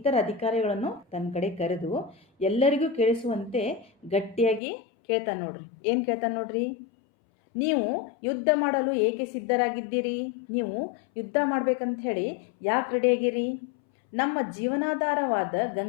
ಅಧಿಕಾರಿಗಳನ್ನು ತನ್ನ ಕಡೆ ಕರೆದು ಎಲ್ಲರಿಗೂ ಕೇಳಿಸುವಂತೆ ಗಟ್ಟಿಯಾಗಿ ಕೇಳ್ತಾನೆ. ನೋಡ್ರಿ, ಏನು ಕೇಳ್ತಾನೆ ನೋಡ್ರಿ, ನೀವು ಯುದ್ಧ ಮಾಡಲು ಏಕೆ ಸಿದ್ಧರಾಗಿದ್ದೀರಿ? ನೀವು ಯುದ್ಧ ಮಾಡ್ಬೇಕಂತ ಹೇಳಿ ಯಾಕೆ ರೆಡಿಯಾಗಿರಿ? ನಮ್ಮ ಜೀವನಾಧಾರವಾದ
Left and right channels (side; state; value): right; drops out; at 4.6 s